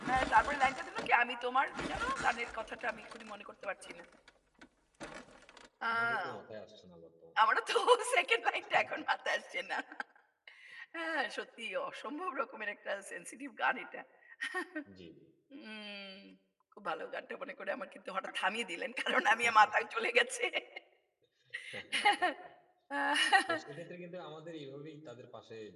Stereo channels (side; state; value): both; identical; correlation 1.00